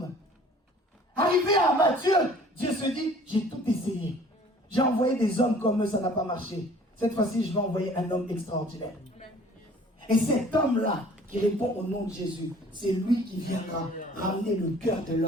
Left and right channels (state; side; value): normal; both; correlation 0.52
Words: arrivé à Matthieu, Dieu se dit, j'ai tout essayé. J'ai envoyé des hommes comme eux, ça n'a pas marché. Cette fois-ci, je vais envoyer un homme extraordinaire. Et cet homme-là, qui répond au nom de Jésus, c'est lui qui viendra ramener le cœur de